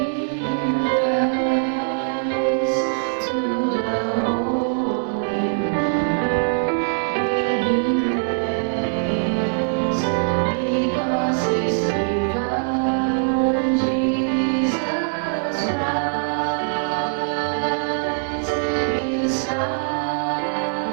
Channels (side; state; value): left; silent; digital silence